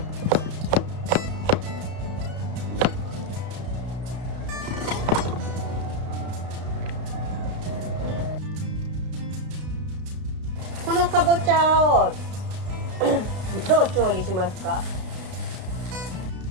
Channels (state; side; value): late; left; 33 ms